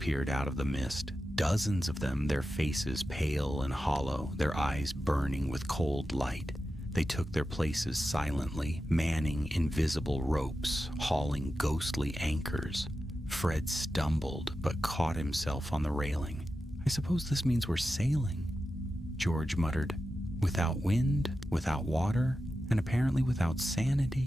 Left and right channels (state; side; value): normal; both; correlation 0.92